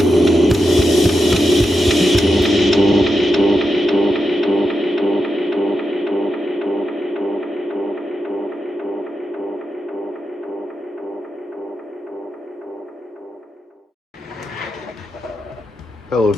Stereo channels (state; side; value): normal; both; correlation 0.87